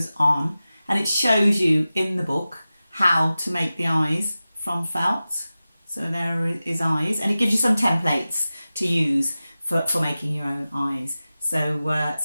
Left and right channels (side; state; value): both; inverted; correlation -0.95